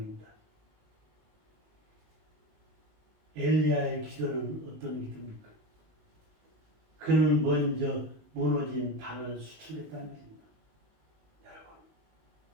엘리야의 기도는 어떤 기도입니까? 그는 먼저 무너진 단을 수축했다는 것입니다. 여러분,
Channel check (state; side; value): late; left; 19 ms